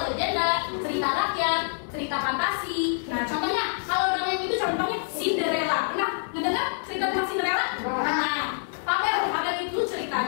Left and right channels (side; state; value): right; silent; digital silence